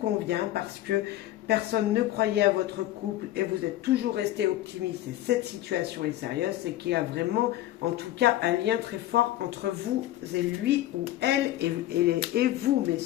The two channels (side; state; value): right; quieter; 14.4 dB